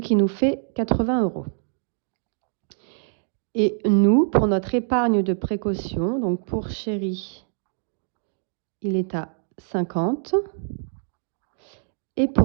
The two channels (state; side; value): silent; left; digital silence